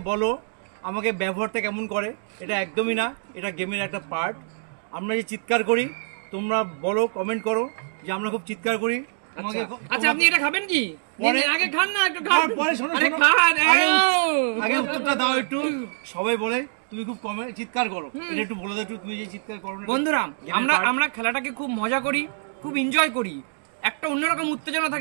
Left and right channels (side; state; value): left; silent; digital silence